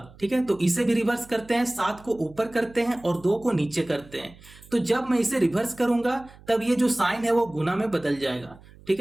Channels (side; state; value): right; noise; hum, 23 dB below the sound